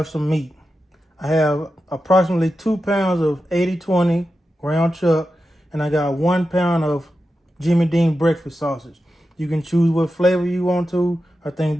some meat. I have approximately 2 pounds of 80/20 ground chuck, and I got 1 pound of Jimmy Dean breakfast sausage. You can choose what flavor you want to. I think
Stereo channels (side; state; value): both; normal; correlation 0.91